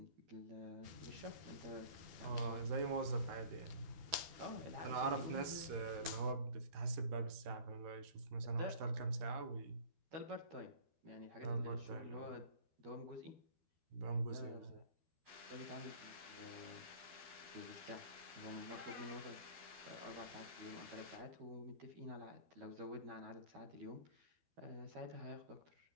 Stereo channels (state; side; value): late; left; 13 ms